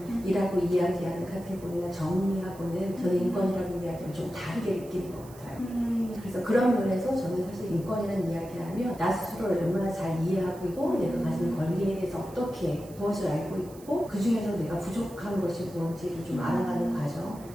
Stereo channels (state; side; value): noise; right; hiss, 22 dB below the sound